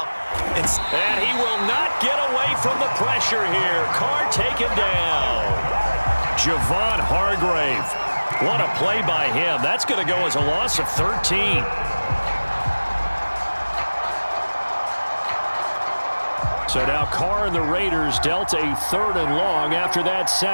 And he will not get away from the pressure here. Carr taken down. Javon Hargrave. What a play by him. That's going to go as a loss of 13. So now Carr and the Raiders dealt a 3rd and long after that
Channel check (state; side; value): inverted; both; correlation -1.00